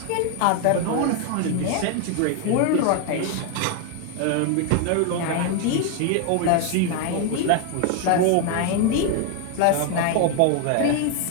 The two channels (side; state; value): both; different; correlation 0.01